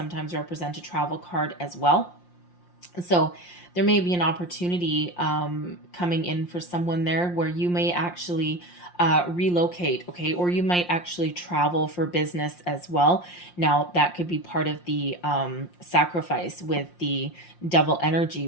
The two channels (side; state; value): right; late; 5.7 ms